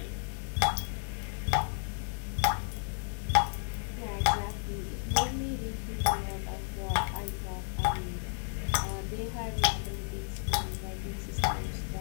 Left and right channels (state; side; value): silent; right; 56 dB below the other